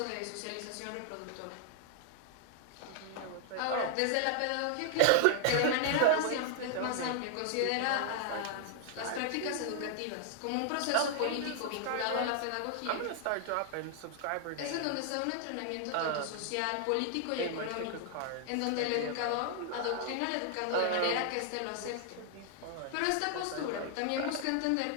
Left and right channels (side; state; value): both; different; correlation 0.00